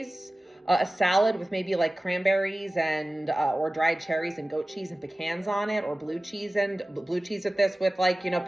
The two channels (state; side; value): normal; both; correlation 0.97